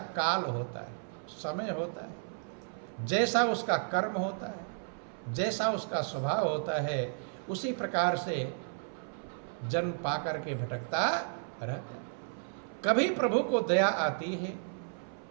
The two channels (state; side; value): silent; left; 56 dB below the other